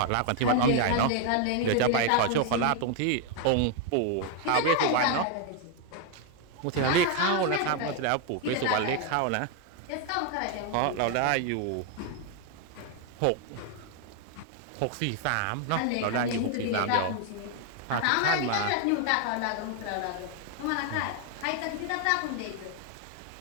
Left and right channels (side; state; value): both; different; correlation 0.00